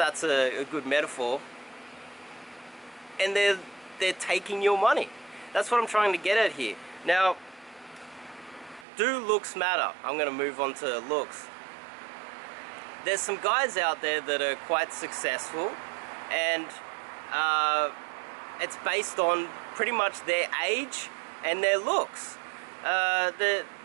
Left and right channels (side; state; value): left; drops out; at 8.8 s